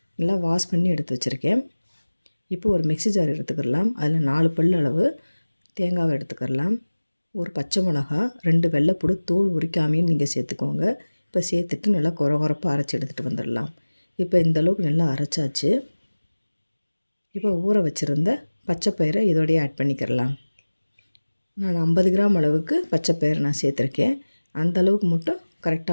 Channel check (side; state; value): both; inverted; correlation -1.00